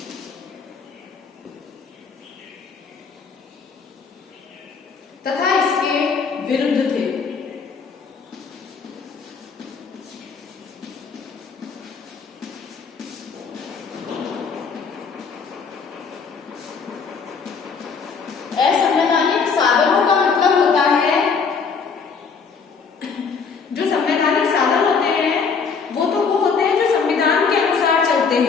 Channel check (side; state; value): right; quieter; 5.5 dB